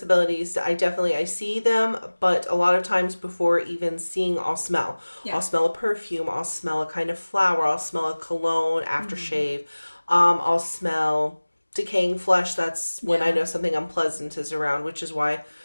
I see them, but a lot of times before even seeing, I'll smell. Yeah. I'll smell a perfume. I'll smell a kind of flower. I'll smell a cologne, aftershave. I'll smell decaying flesh. That's when I know something unpleasant is around, which is why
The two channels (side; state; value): both; inverted; correlation -1.00